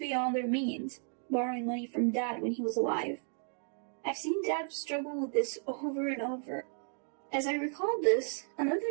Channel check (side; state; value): left; silent; 55 dB below the other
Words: their means, borrowing money from Dad when he was alive. I've seen Dad struggle with this over and over. As I recalled this,